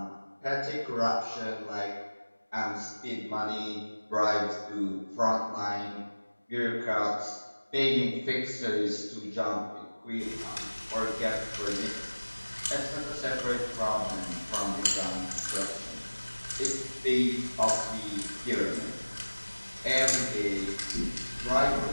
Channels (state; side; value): inverted; both; correlation -1.00